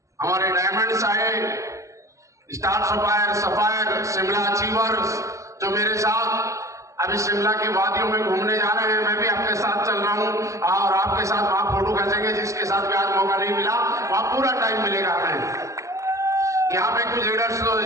हमारे डायमंड्स आए, स्टार सफायर, शिमला अचीवर्स, जो मेरे साथ अभी शिमला की वादियों में घूमने जा रहे हैं। मैं भी आपके साथ चल रहा हूं और आपके साथ वहां फोटो खींचेंगे। जिसके साथ भी आज मौका नहीं मिला वहां पूरा टाइम मिलेगा हमें। यहाँ पे कुछ लीडर्स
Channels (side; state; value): left; late; 0.15 ms